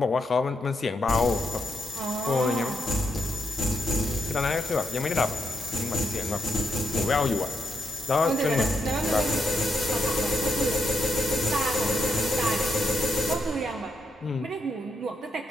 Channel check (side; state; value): both; normal; correlation 0.80